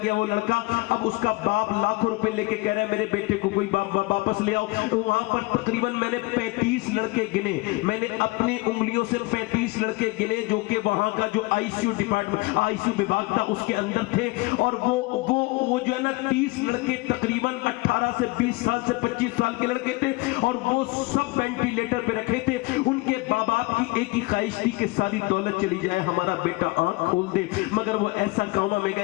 گیا وہ لڑکا۔ اب اس کا باپ لاکھوں روپے لے کے کہہ رہا ہے میرے بیٹے کو کوئی واپس لے آؤ۔ وہاں پر تقریباً میں نے 35 لڑکے گنے، میں نے اپنی انگلیوں سے 35 لڑکے گنے جو کہ وہاں کا جو I C U department, I C U وبھاگ تھا اس کے اندر تھے، اور وہ جو ہے نا 30 لڑکے تقریباً 18 سے 20 سال سے 25 سال کے لڑکے تھے، اور وہ سب وینٹیلیٹر پہ رکھے تھے۔ ان کے باپ کی ایک ہی خواہش تھی کہ ساری دولت چلی جائے، ہمارا بیٹا آنکھ کھول دے، مگر وہ ایسا کوما میں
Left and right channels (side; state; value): right; quieter; 23.2 dB